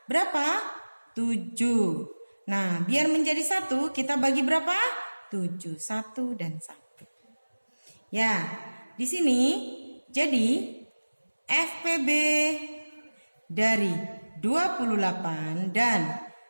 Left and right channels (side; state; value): both; inverted; correlation -1.00